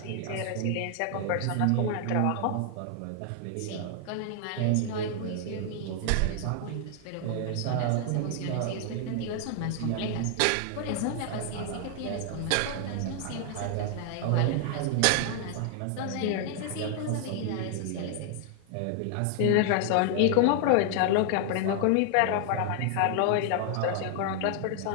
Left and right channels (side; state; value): both; different; correlation 0.00